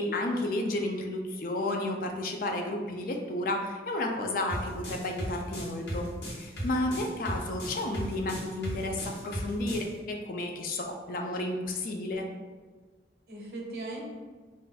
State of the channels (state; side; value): normal; both; correlation 0.42